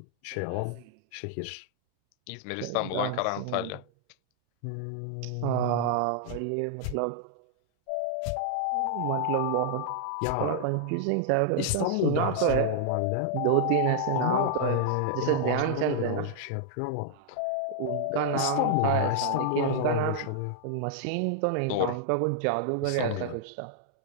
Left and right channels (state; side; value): different; both; correlation -0.01